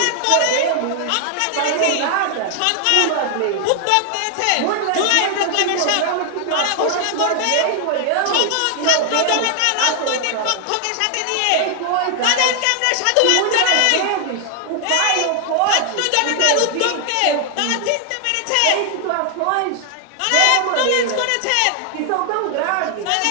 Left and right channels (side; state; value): both; different; correlation 0.00